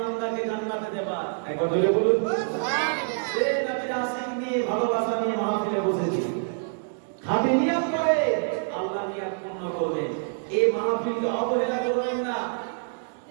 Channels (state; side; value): silent; left; digital silence